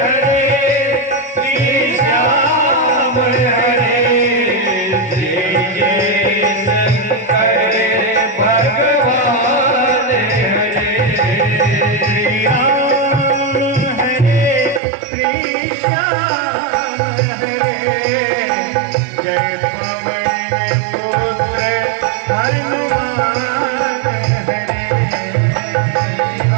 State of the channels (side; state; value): left; drops out; at 14.8 s